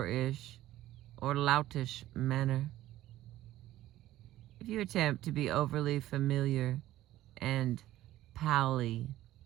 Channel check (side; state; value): left; quieter; 14.6 dB